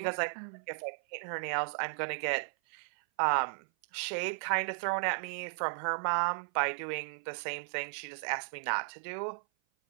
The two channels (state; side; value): silent; left; 54 dB below the other